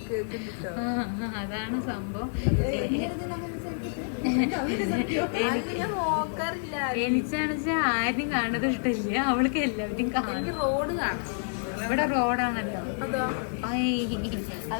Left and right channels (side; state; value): right; silent; digital silence